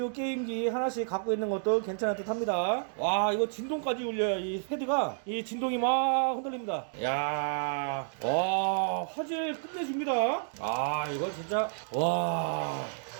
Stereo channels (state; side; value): silent; left; digital silence